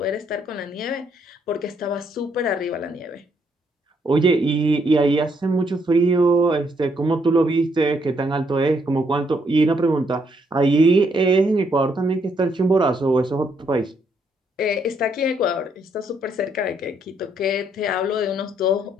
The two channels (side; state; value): both; normal; correlation 0.72